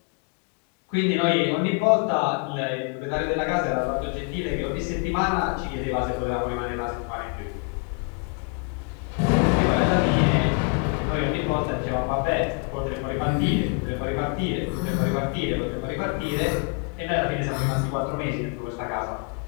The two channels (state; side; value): quieter; right; 32.7 dB